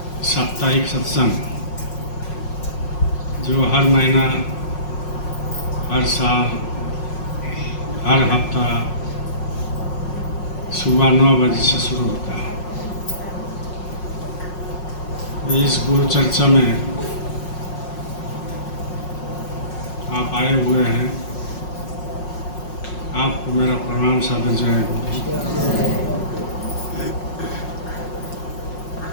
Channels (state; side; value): late; right; 5.5 ms